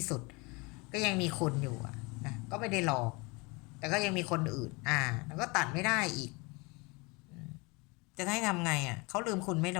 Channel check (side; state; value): right; quieter; 27.4 dB